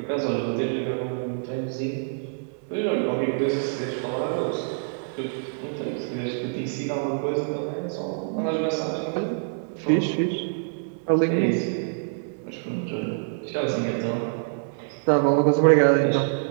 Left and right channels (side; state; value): left; silent; digital silence